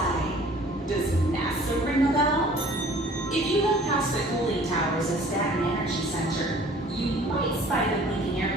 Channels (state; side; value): normal; both; correlation 0.51